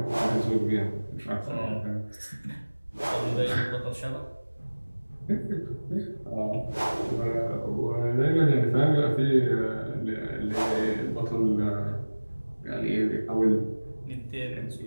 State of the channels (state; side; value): inverted; both; correlation -1.00